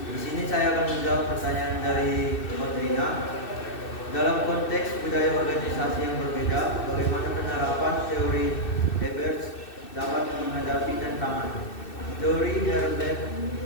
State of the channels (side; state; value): right; late; 2.6 ms